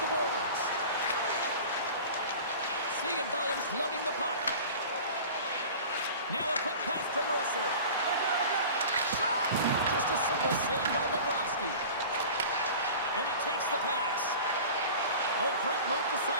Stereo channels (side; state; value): both; inverted; correlation -0.38